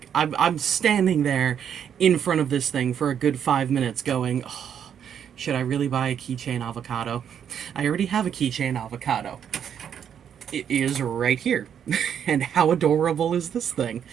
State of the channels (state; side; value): quieter; left; 8.6 dB